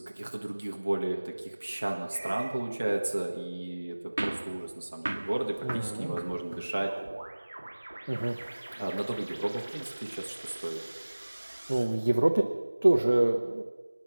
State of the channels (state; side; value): inverted; both; correlation -1.00